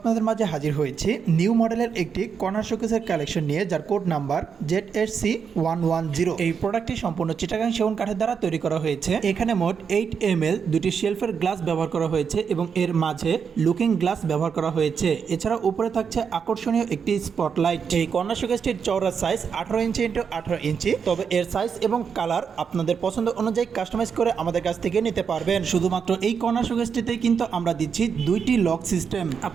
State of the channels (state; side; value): quieter; left; 6.5 dB